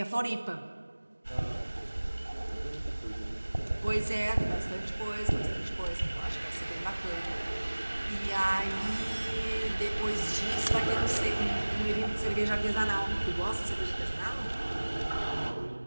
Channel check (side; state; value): both; inverted; correlation -1.00